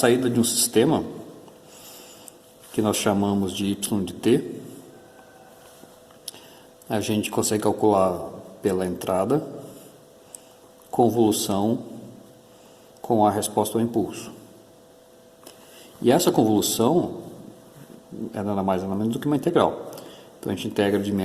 de um sistema que nós chamamos de y de t, a gente consegue calcular pela entrada, convolução com a resposta ao impulso. E essa convolução é nada mais nada menos do que uma integral. Então a gente integra de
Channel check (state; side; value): identical; both; correlation 1.00